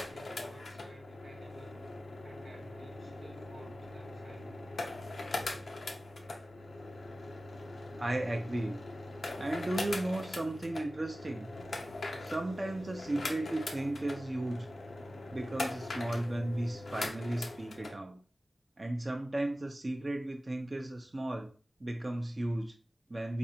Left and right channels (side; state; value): both; normal; correlation 0.96